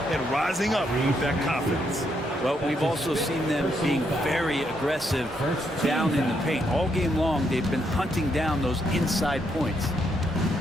and rising up with that confidence. Well, we've also seen them being very aggressive down in the paint. All game long, they've been hunting down those inside points.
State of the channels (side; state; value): both; normal; correlation 0.76